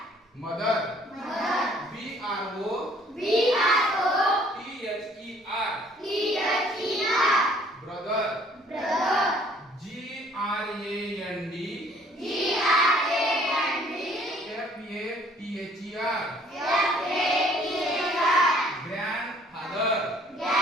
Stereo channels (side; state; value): both; normal; correlation 0.59